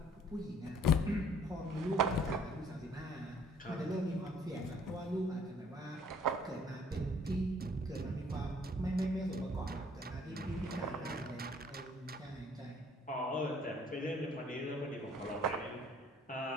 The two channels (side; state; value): both; normal; correlation 0.59